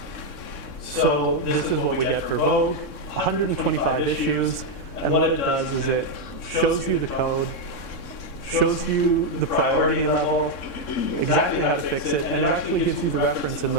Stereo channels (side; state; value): right; late; 3.6 ms